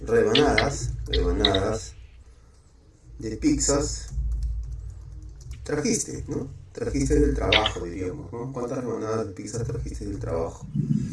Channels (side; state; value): both; identical; correlation 1.00